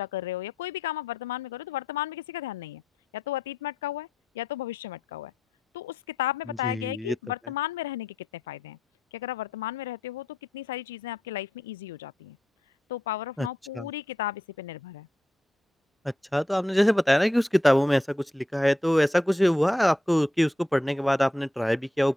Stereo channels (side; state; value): both; normal; correlation 0.82